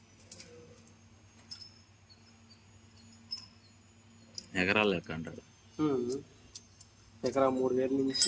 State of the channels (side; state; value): both; identical; correlation 1.00